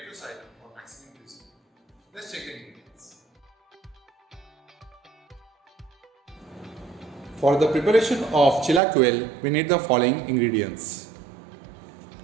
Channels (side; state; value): left; drops out; at 8.8 s